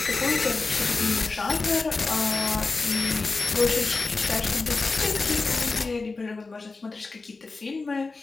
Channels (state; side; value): quieter; right; 3.9 dB